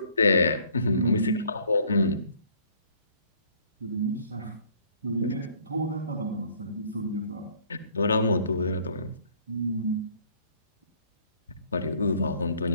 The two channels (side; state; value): both; inverted; correlation -0.60